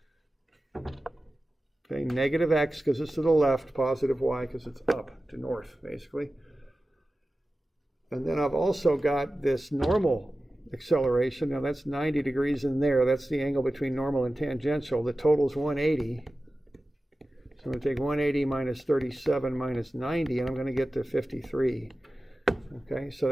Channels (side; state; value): both; normal; correlation 0.95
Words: Okay, negative x because it's to the left, positive y because it's up to north, basically. And then I've also got this normal acceleration. Now that's 90 degrees in there. That's the angle between normal and tangential. The total is 180. So I'm going to take 180 minus 37 minus 90, and I'm going to get to 53. Okay, so